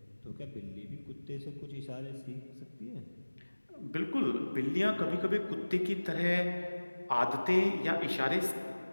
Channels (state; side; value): inverted; both; correlation -1.00